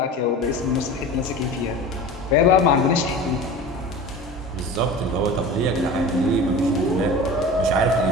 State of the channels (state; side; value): normal; both; correlation 0.35